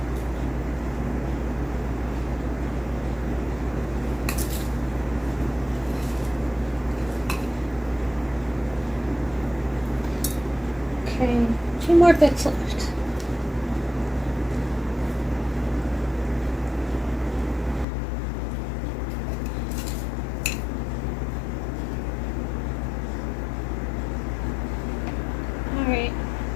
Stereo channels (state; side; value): drops out; right; at 17.9 s